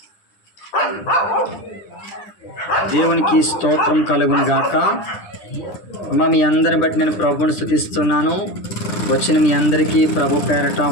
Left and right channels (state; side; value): late; right; 10 ms